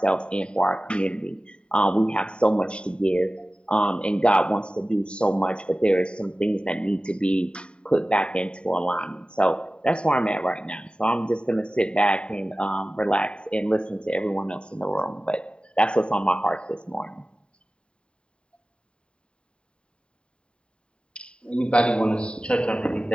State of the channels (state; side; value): late; right; 0.053 ms